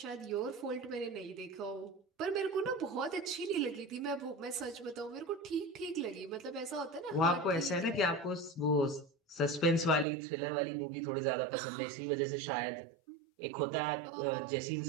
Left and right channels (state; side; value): drops out; left; at 10.1 s